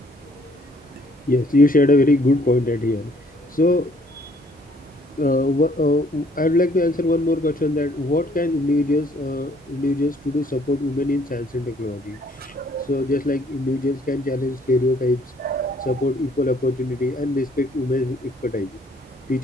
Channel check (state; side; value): normal; both; correlation 0.62